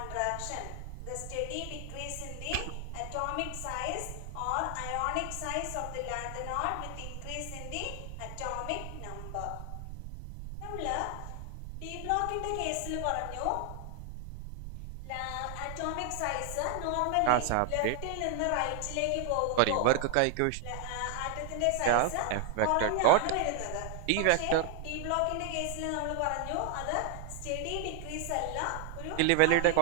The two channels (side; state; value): both; different; correlation 0.00